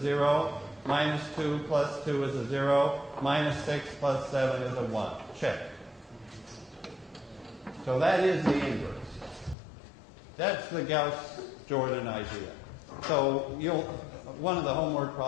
0. Minus 2 plus 2 is a 0. Minus 6 plus 7 is a 1. Check. So that is the inverse. That's the Gauss Jordan idea. So one of the homework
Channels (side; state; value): right; drops out; at 9.6 s